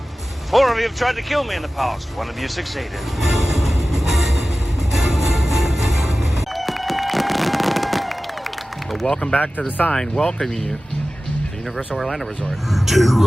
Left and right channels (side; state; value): both; normal; correlation 0.96